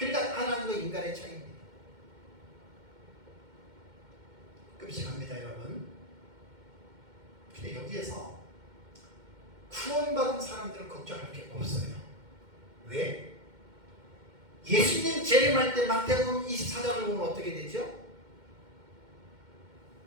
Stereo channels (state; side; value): late; left; 2.1 ms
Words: 하나님과 인간의 차이입니다. 끔찍합니다 여러분. 근데 여기에서 구원받은 사람들은 걱정할 게 없어요. 왜? 예수님 재림할 때 마태복음 24장을 보면 어떻게 되죠?